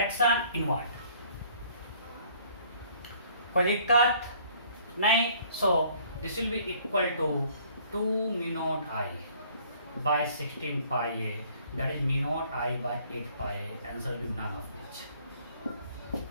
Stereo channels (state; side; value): inverted; both; correlation -0.58